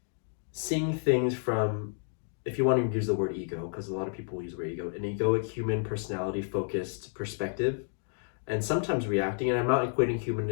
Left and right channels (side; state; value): right; silent; digital silence